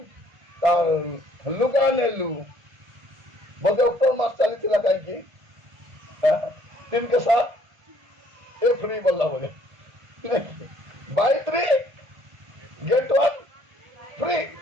तार लुगा नेलु बोले अक्टोबर मास चली थी कहीं 3 के साथ ए फ्री बोला बोले बाय 3 गेट 1 फ्री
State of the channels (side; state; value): left; late; 1.7 ms